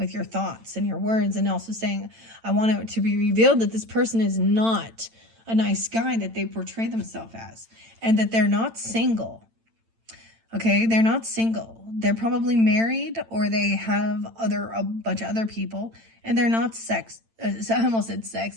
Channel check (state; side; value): late; left; 8.9 ms